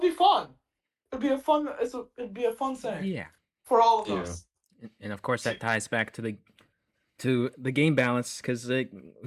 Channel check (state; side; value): identical; both; correlation 1.00